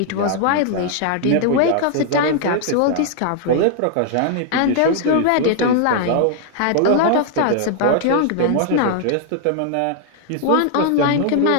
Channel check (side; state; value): both; different; correlation -0.01